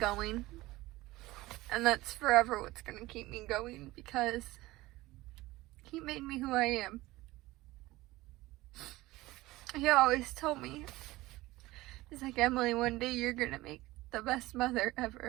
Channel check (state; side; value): quieter; left; 18.8 dB